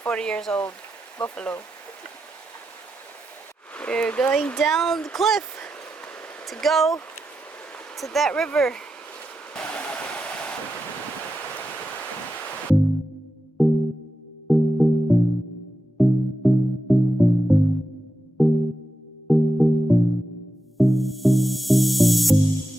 40 years old buffalo. We're going down the cliff to go to that river.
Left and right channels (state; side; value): normal; both; correlation 0.89